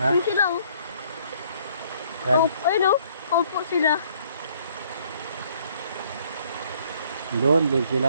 Ayun sila o. Yan. Ayun o, kaupo sila. Doon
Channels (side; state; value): both; inverted; correlation -0.62